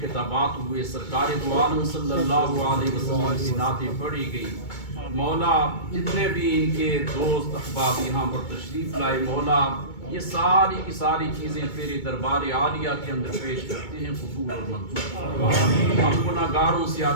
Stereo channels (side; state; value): right; late; 2.2 ms